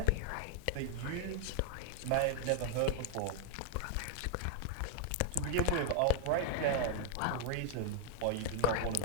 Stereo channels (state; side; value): different; both; correlation 0.00